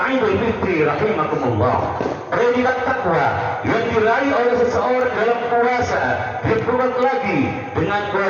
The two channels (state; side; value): identical; both; correlation 1.00